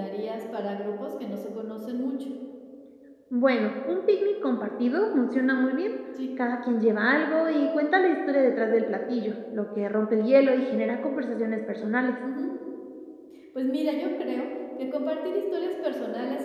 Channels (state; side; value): identical; both; correlation 1.00